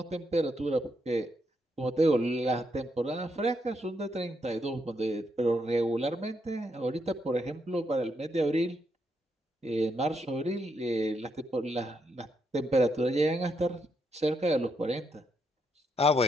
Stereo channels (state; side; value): normal; both; correlation 0.79